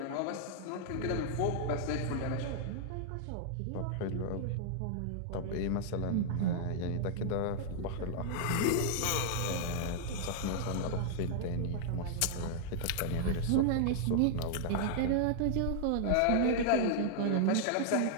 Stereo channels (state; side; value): different; both; correlation -0.01